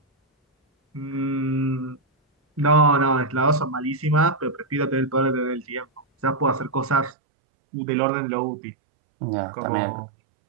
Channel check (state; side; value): drops out; left; at 7.2 s